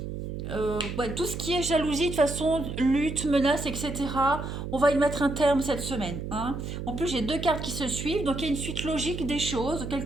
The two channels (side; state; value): right; noise; hum, 6 dB below the sound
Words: ouais, tout ce qui est jalousie, de toute façon, lutte, menace, etc., on va y mettre un terme cette semaine. Hein. En plus, j'ai deux cartes qui se suivent, donc il y a une suite logique des choses.